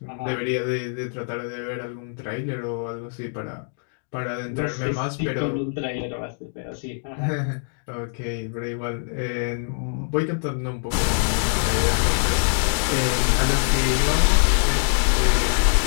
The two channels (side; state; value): right; silent; digital silence